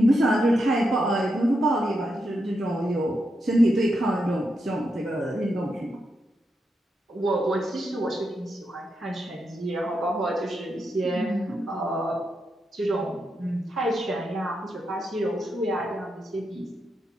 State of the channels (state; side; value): normal; both; correlation 0.84